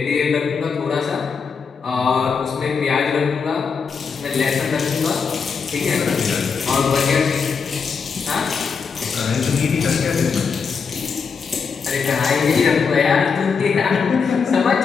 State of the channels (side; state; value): right; quieter; 5.7 dB